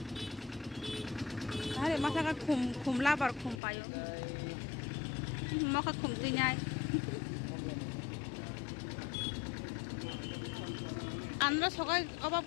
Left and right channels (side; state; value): right; drops out; at 3.6 s